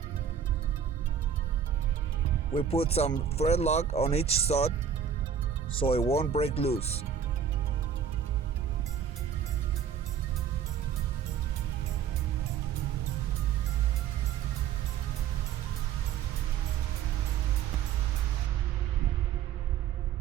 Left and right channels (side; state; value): left; quieter; 8.1 dB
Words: We put some thread lock on each stud so it won't break loose.